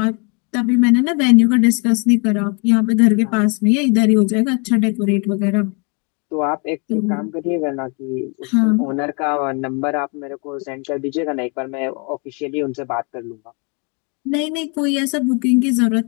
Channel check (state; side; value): quieter; right; 34.6 dB